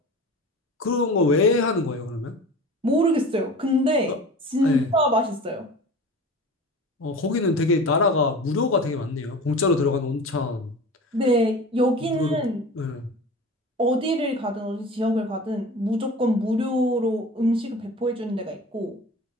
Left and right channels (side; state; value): both; normal; correlation 0.36